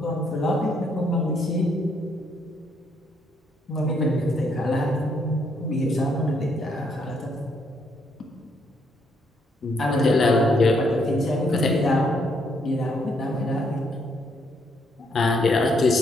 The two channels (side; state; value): both; normal; correlation 0.72